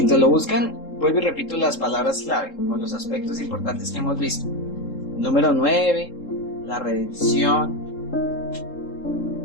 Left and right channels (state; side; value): late; right; 3.7 ms